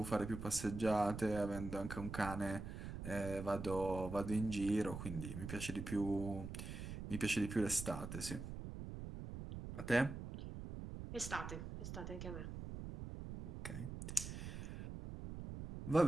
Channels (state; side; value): noise; right; rumble, 7 dB below the sound